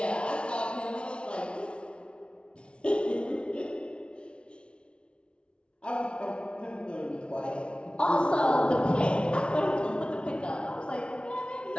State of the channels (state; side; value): late; right; 0.058 ms